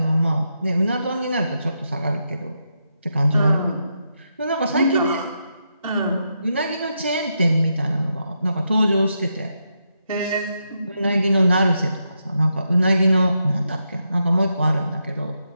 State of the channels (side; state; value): both; inverted; correlation -0.83